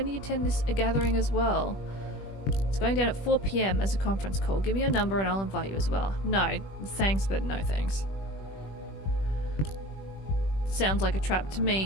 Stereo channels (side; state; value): right; late; 21 ms